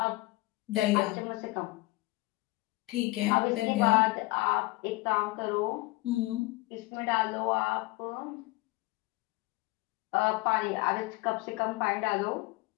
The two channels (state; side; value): quieter; right; 21.4 dB